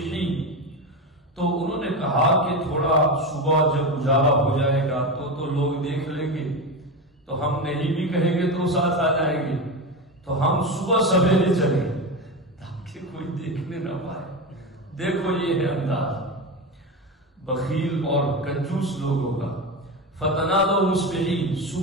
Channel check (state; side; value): normal; both; correlation 0.19